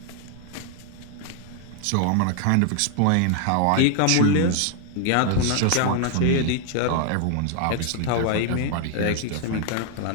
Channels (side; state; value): both; different; correlation 0.00